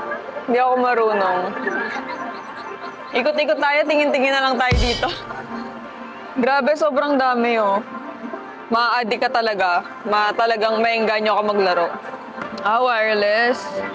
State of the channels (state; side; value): identical; both; correlation 1.00